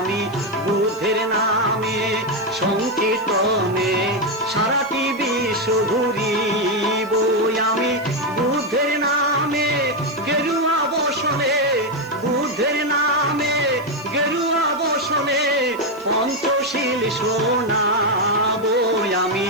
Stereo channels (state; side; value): noise; right; hiss, 25 dB below the sound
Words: বুদ্ধের নামে সংকীর্তনে সারাটি বিশ্ব ঘুরিব। আমি বুদ্ধের নামে গেরুয়া বসনে, বুদ্ধের নামে গেরুয়া বসনে পঞ্চশীল শোনাব। আমি